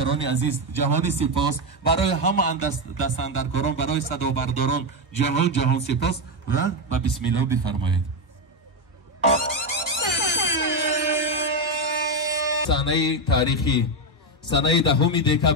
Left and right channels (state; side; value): normal; both; correlation 0.09